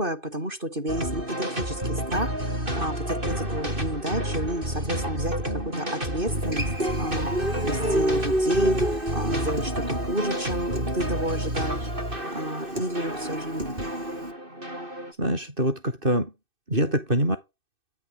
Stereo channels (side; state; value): left; late; 2.6 ms